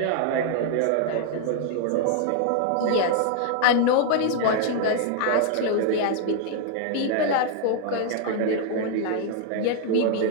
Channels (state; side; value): different; both; correlation 0.00